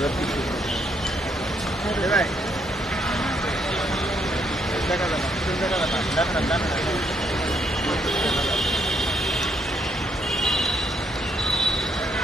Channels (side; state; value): both; normal; correlation 0.73